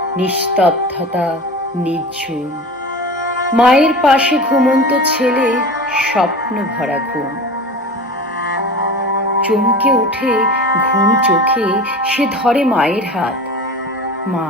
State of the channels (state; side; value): normal; both; correlation 0.33